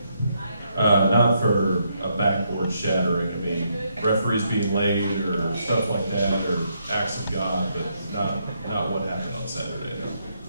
Not for a backboard shattering. I mean, referees being late or stuff like that, or acts of God, but not what happened on Saturday.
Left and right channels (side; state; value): both; inverted; correlation -0.76